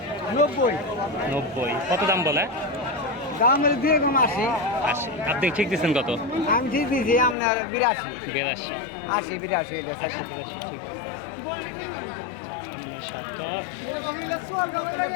90। কত দাম বলে? দাম দিয়ে কম 80। আপনি ঠিক দিচ্ছেন কত? আমি ঠিক দিয়েছি আপনার 82। 82। 80 82 80 82 ঠিক দিচ্ছেন। এই শার্টটা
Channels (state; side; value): drops out; right; at 7.4 s